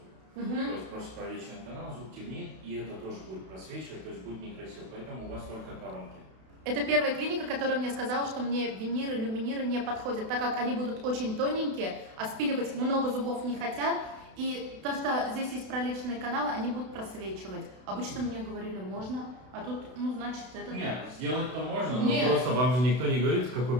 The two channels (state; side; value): late; left; 32 ms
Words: То есть просто пролеченный канал, зуб темнеет, и это тоже будет просвечивать, то есть будет некрасиво. Поэтому у вас только коронки. Это первая клиника, которая мне сказала, что мне виниры, люминиры не подходят, так как они будут очень тоненькие, а спиливать много зубов не хотят. И то, что здесь есть пролеченные каналы, они будут просвечивать. Обычно мне говорили, можно, а тут, значит, это... Нет, сделать-то можно, Нет. но просто вам же никто не говорит,